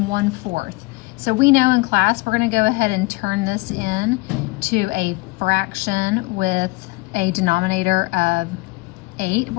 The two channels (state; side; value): quieter; right; 23.7 dB